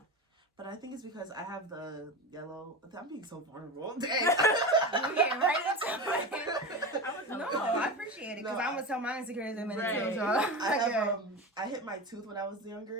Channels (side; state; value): both; normal; correlation 0.25